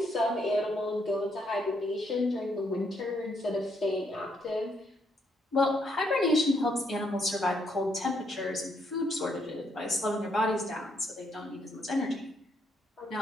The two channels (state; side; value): normal; both; correlation 0.74